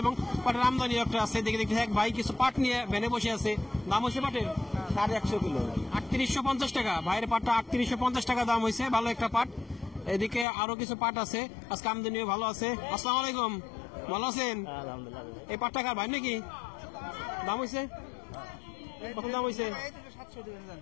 এবং পাটের আমদানি একটা আছে। দেখে দেখতে এক ভাই কিছু পাট নিয়ে ভ্যানে বসে আছে। দাম হয়েছে পাটের 150 কিলো 3850 টাকা। ভাইয়ের পাটটা 3850 টাকা দাম হয়েছে, ভালো একটা পাট। এদিকে আরো কিছু পাট আছে, আজকে আমদানিও ভালো আছে। আসসালামু আলাইকুম, ভালো আছেন? আলহামদুলিল্লাহ। এই পাট টাকার ভাই নাকি? দাম হয়েছে কত? দাম হয়েছে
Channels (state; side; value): drops out; right; at 10.5 s